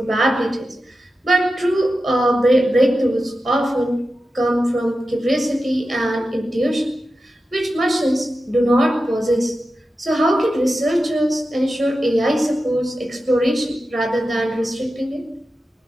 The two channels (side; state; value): both; normal; correlation 0.92